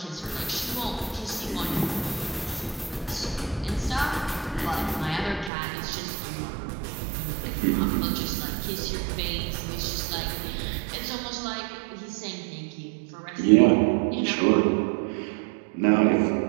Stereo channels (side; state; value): left; drops out; at 5.5 s